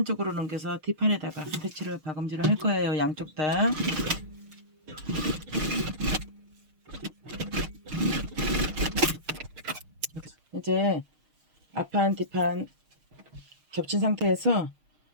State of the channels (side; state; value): left; late; 6.5 ms